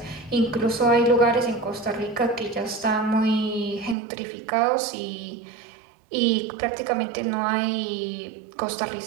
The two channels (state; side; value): drops out; left; at 4.0 s